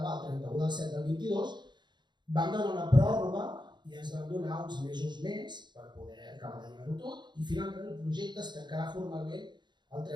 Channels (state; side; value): late; left; 0.22 ms